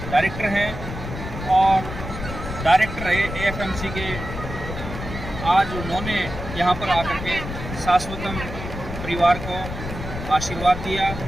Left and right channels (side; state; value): left; noise; rumble, 8 dB below the sound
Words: डायरेक्टर हैं और डायरेक्टर रहे AFMC के, आज उन्होंने यहाँ पर आकर के शाश्वतम परिवार को आशीर्वाद दिया